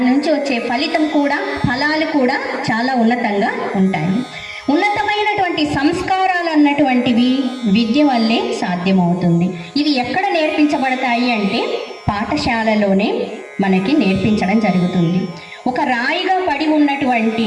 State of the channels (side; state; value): both; identical; correlation 1.00